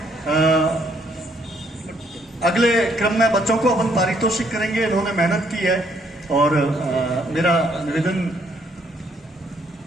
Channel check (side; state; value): both; normal; correlation 0.68